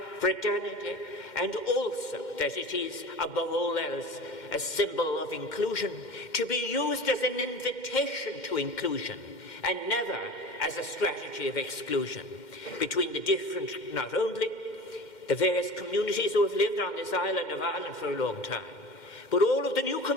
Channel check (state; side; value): late; right; 2.1 ms